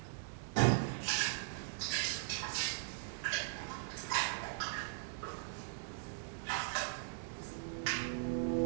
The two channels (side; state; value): left; silent; digital silence